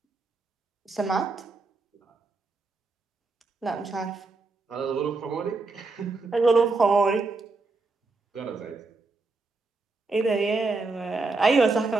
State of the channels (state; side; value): quieter; left; 3.7 dB